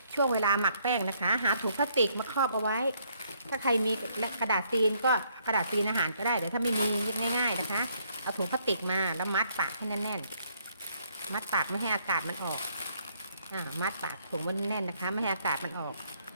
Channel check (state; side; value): inverted; both; correlation -0.69